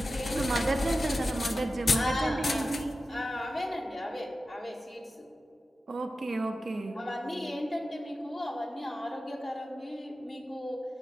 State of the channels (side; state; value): both; normal; correlation 0.93